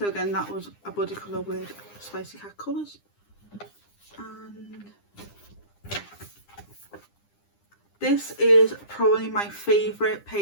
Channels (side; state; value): right; late; 9.9 ms